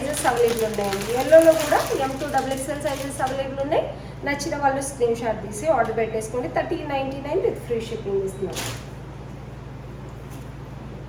అవైలబుల్ ఉన్నాయండి. ఎల్లోలో కూడా M2 XXL సైజెస్ అవైలబుల్ ఉన్నాయి. నచ్చిన వాళ్ళు స్క్రీన్ షాట్ తీసి ఆర్డర్ పెట్టేసుకోండి. 1399 విత్ ఫ్రీ షిప్పింగ్ ఇస్తున్నాము.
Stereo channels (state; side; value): identical; both; correlation 1.00